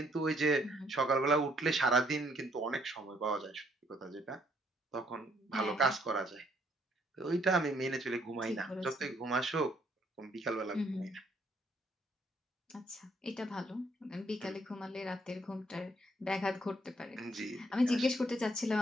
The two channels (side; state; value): both; normal; correlation 0.68